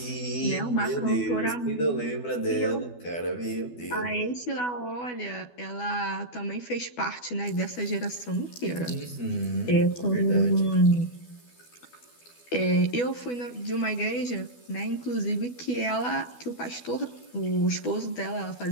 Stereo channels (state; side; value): late; right; 12 ms